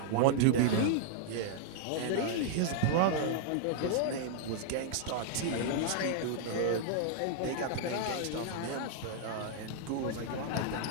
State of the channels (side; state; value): both; different; correlation -0.01